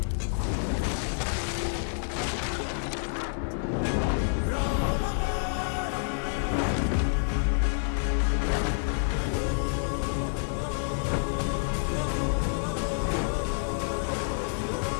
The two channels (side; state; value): right; silent; digital silence